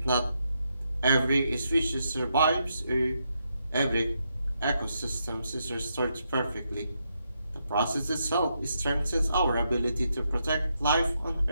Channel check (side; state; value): both; inverted; correlation -0.81